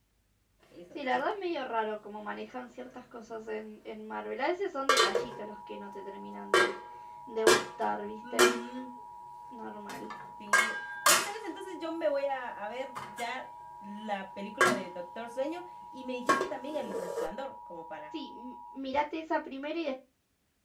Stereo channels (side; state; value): both; identical; correlation 1.00